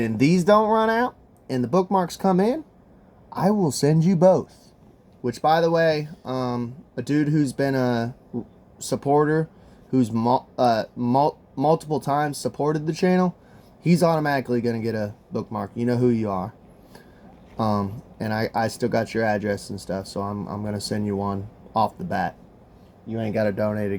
then these don't run out, and the bookmarks come in, I will send you both. Which, by the way, a dude who's been a supporter, who's multiple times supported the channel, he's automatically going to get a bookmark. You know who you are. And I still got your address and stuff, so I'm going to send you one off the bat. You ain't got to donate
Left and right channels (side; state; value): both; identical; correlation 1.00